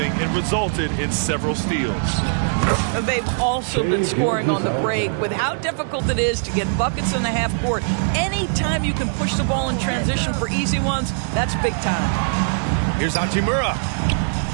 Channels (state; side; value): silent; left; digital silence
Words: and resulted in several steals. They've also been scoring on the break. With how difficult it is to get buckets in the half court, anytime you can push the ball in transition for easy ones, that's big time. Here's Hachimura.